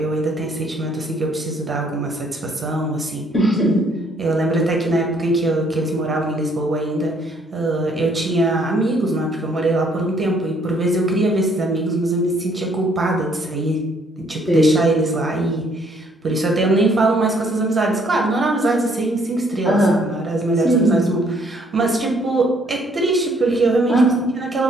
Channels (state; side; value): normal; both; correlation 0.65